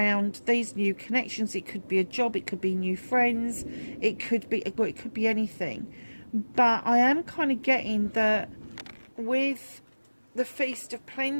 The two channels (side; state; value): both; inverted; correlation -1.00